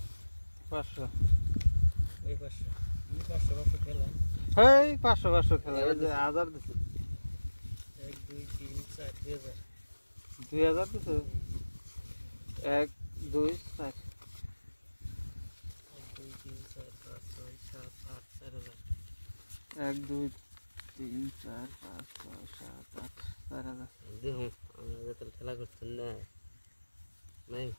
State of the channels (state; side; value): inverted; both; correlation -1.00